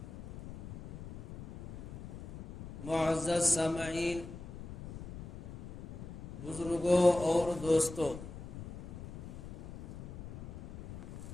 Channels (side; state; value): left; noise; rumble, 12 dB below the sound